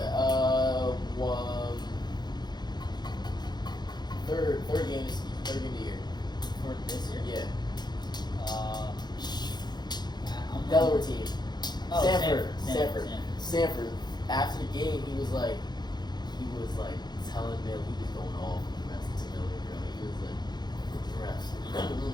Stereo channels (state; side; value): late; right; 0.21 ms